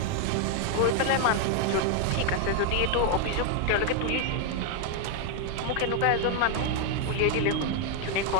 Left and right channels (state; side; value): different; both; correlation 0.00